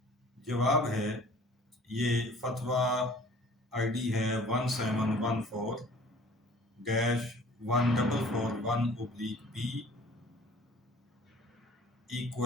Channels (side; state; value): both; normal; correlation 0.50